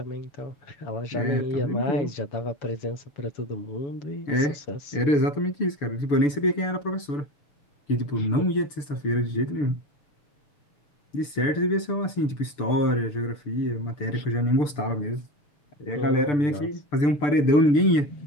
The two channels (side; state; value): right; late; 6.8 ms